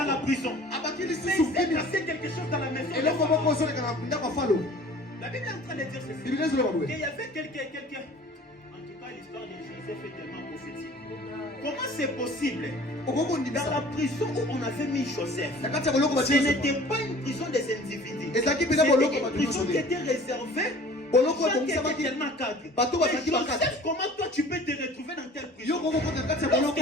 la prison. Mais il s'est passé quelque chose dans la maison. La Bible est en train de dire ceci. Qu'il y avait quelqu'un. En tout cas, l'histoire de Joseph est tellement prophétique. Comment c'est possible? Dans la prison où on avait mis Joseph, ce n'était pas une prison des individus. C'était une prison qui était réservée. Tellement cadre. Joseph, comment toi tu peux te retrouver dans telle prison?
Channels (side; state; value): both; normal; correlation 0.47